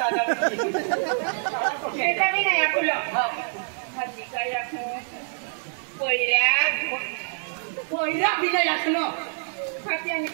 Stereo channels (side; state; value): left; silent; digital silence